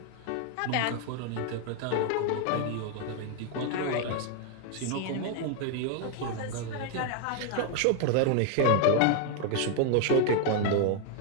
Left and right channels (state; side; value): different; both; correlation 0.00